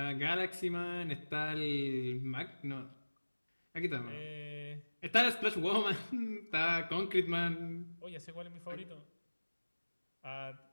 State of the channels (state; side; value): inverted; both; correlation -1.00